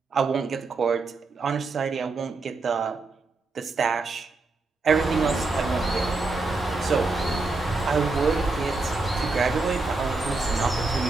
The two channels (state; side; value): quieter; left; 3.7 dB